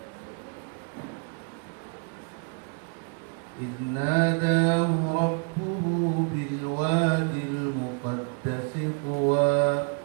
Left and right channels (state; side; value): quieter; left; 38.3 dB